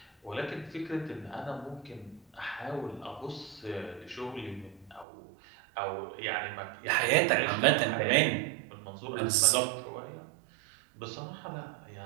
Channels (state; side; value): drops out; left; at 5.1 s